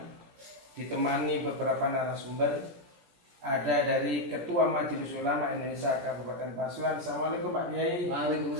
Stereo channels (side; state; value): left; late; 17 ms